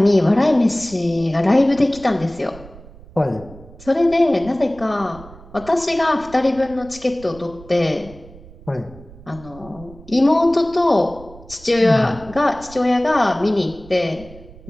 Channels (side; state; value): right; noise; rumble, 20 dB below the sound